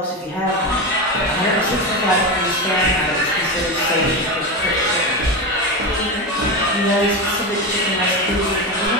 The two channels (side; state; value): both; normal; correlation 0.17